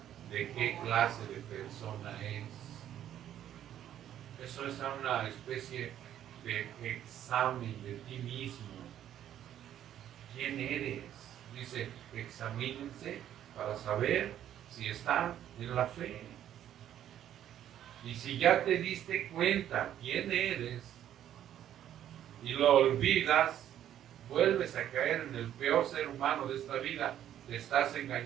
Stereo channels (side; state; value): left; quieter; 11.0 dB